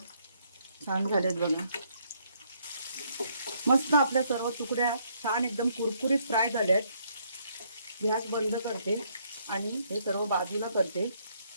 छान झालेत बघा. मस्त आपल्या सर्व तुकड्या छान एकदम कुरकुरीत फ्राय झाल्यात. गॅस बंद करते आणि हे सर्व बाजूला करते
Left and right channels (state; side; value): inverted; both; correlation -0.69